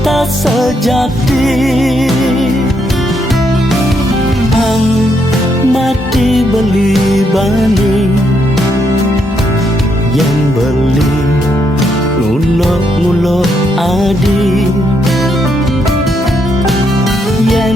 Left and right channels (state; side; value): normal; both; correlation 0.76